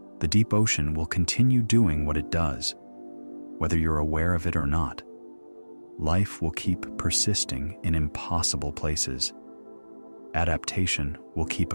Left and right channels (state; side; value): inverted; both; correlation -1.00